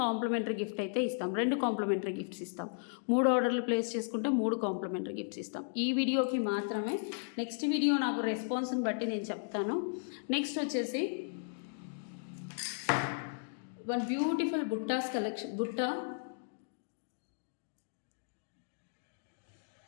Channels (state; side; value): silent; right; digital silence